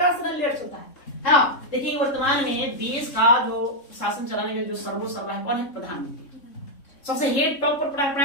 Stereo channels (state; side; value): late; right; 3.6 ms